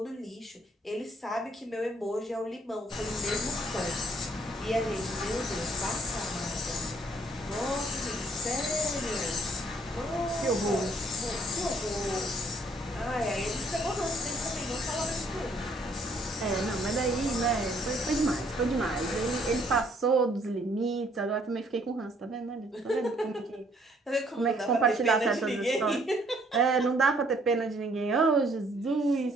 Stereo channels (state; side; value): normal; both; correlation 0.64